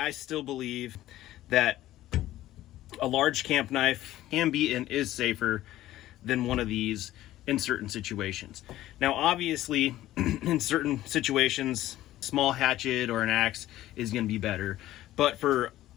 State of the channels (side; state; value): right; quieter; 14.7 dB